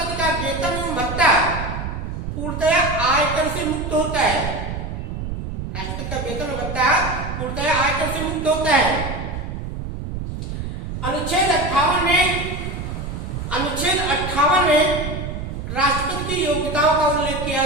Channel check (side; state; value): right; noise; rumble, 6 dB below the sound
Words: का वेतन एवं भत्ता पूर्णतया आयकर से मुक्त होता है। राष्ट्रपति का वेतन और भत्ता कर से मुक्त होता है। अनुच्छेद 58 में राष्ट्रपति की योग्यताओं का उल्लेख किया